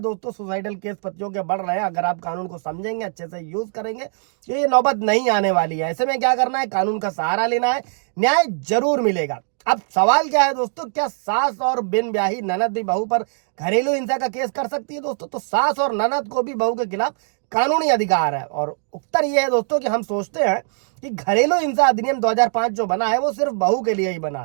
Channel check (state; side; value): silent; left; digital silence